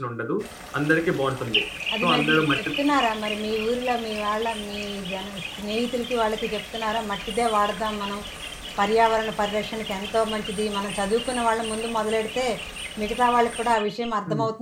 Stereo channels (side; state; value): both; identical; correlation 1.00